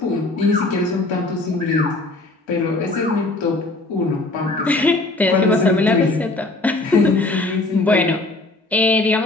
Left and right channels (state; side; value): quieter; right; 3.0 dB